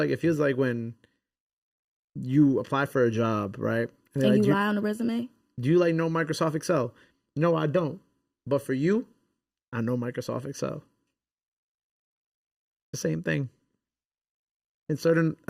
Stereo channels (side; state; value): both; identical; correlation 1.00